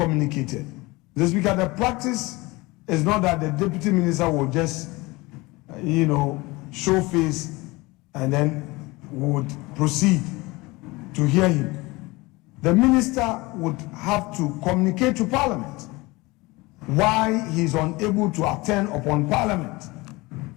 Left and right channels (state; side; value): quieter; right; 22.8 dB